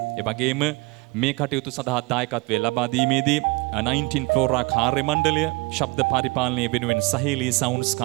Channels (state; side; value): quieter; left; 25.3 dB